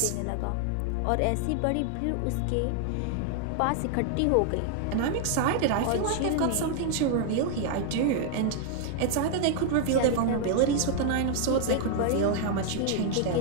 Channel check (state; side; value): different; both; correlation 0.00